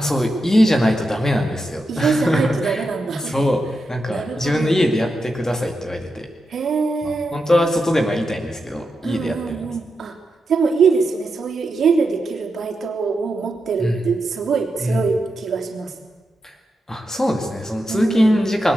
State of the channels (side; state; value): both; normal; correlation 0.87